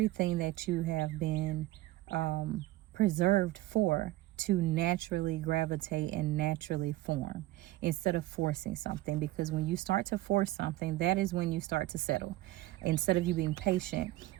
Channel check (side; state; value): left; quieter; 17.1 dB